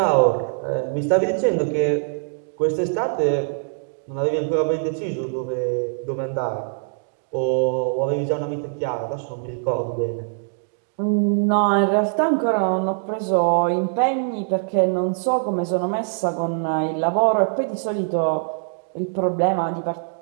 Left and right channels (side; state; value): left; silent; digital silence